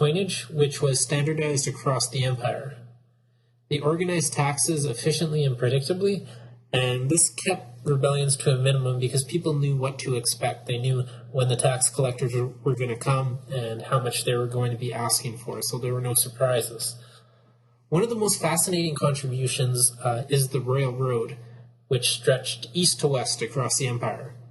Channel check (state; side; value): identical; both; correlation 1.00